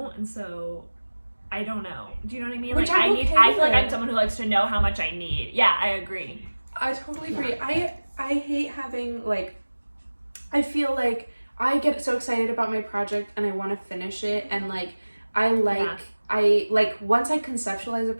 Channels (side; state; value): both; inverted; correlation -1.00